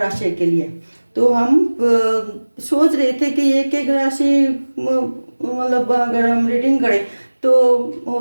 राशि के लिए। तो हम सोच रहे थे कि एक एक राशि मतलब अगर हम रीडिंग करें तो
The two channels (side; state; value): both; inverted; correlation -1.00